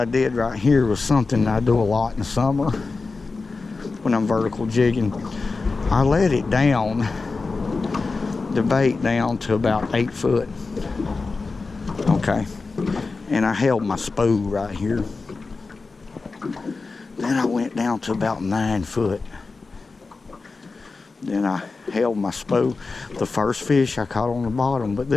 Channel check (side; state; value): right; quieter; 4.0 dB